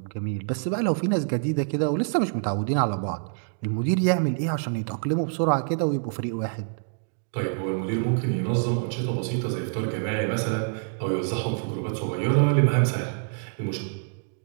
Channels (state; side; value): silent; left; 61 dB below the other